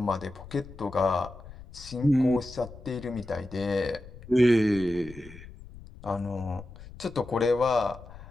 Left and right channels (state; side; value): noise; left; rumble, 17 dB below the sound